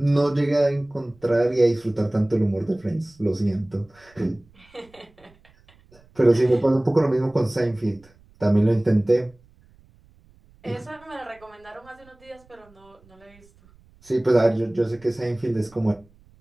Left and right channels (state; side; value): noise; right; rumble, 29 dB below the sound